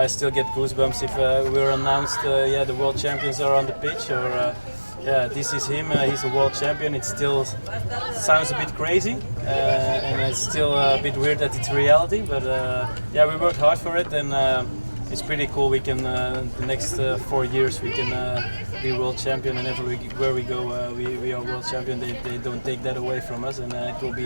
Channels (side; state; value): both; inverted; correlation -1.00